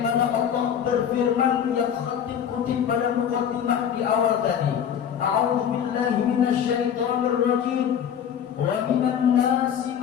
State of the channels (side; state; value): right; quieter; 8.6 dB